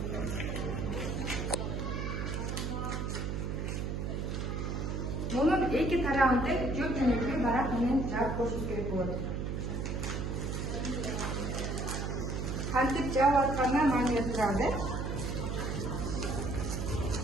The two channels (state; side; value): noise; right; hum, 2 dB below the sound